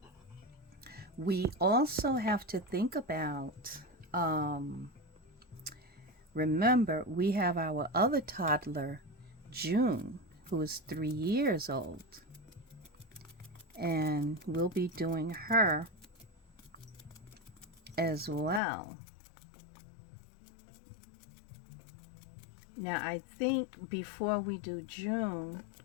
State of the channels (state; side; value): drops out; right; at 18.6 s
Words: we also have to think about, remember, we have our other toddler, June, who is 3 years old. And we'll be doing her as well. Now, I think before we do June,